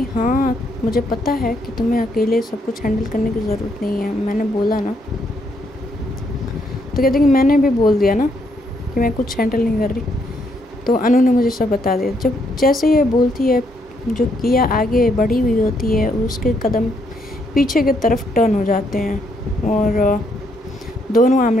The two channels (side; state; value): both; normal; correlation 0.74